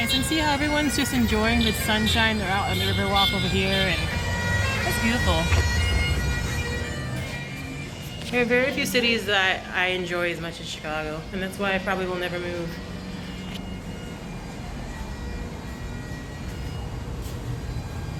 And see how everyone's just enjoying the sunshine. They're out on the river walk over here, and it's beautiful. There are very few cities that I enjoy as much as Chicago, and that's why I probably will never move.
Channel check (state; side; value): identical; both; correlation 1.00